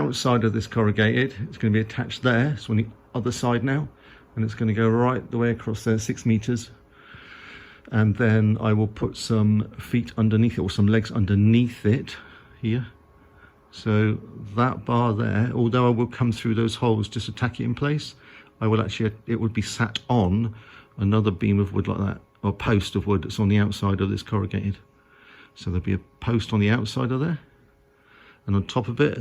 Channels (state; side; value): identical; both; correlation 1.00